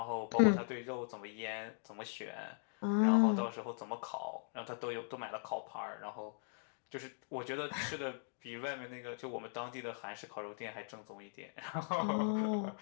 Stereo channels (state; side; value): silent; right; digital silence